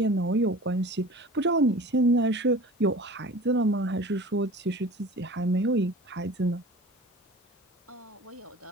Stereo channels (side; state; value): both; normal; correlation 0.40